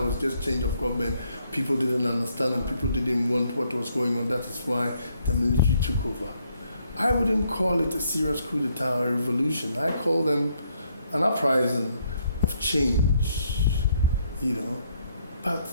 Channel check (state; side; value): inverted; both; correlation -0.71